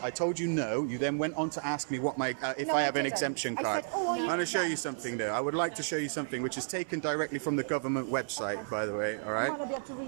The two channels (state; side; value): silent; left; 56 dB below the other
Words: I told you no. You then went on to ask me what if I have an exemption card. I'm going to show you something though. I would like to show you something which is taken directly from the government website, by the way. All right. You might not be able to